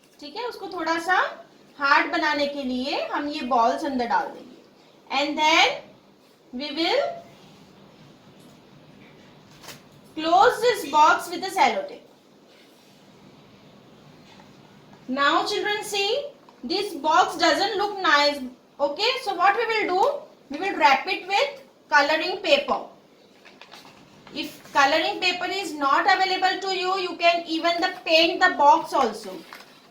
ठीक है, उसको थोड़ा सा हार्ड बनाने के लिए हम ये बॉल्स अंदर डाल देंगे and then we will close this box with the sellotape. Now children, see, this box doesn't look nice. Okay, so what we will do, we will wrap it with coloring paper. If coloring paper is not available to you, you can even paint the box also.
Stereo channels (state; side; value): identical; both; correlation 1.00